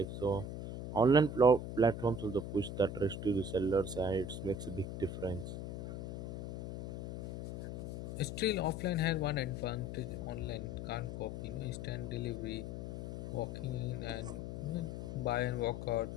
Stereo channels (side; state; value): left; noise; hum, 6 dB below the sound